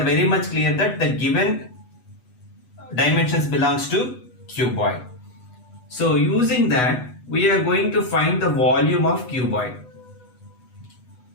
very much clear that the given dimensions belongs to cuboid. So using that, we are going to find the volume of cuboid.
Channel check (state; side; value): late; right; 8.1 ms